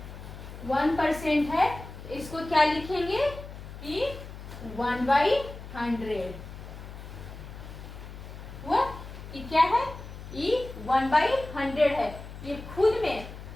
1% है, तो इसको क्या लिखेंगे कि 1/100 हुआ। ये क्या है? ये 1/100 है। ये खुद में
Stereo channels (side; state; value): left; noise; hum, 13 dB below the sound